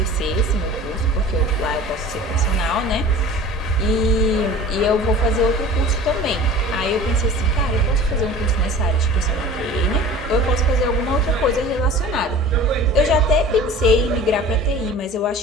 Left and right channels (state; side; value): normal; both; correlation 0.41